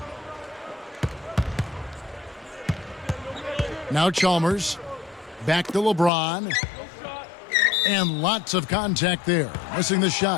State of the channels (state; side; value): drops out; right; at 6.1 s